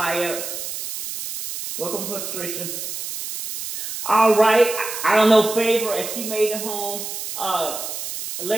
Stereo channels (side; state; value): right; noise; hiss, 7 dB below the sound